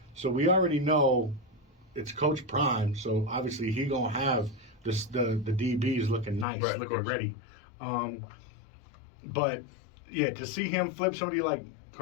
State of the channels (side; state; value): right; drops out; at 6.5 s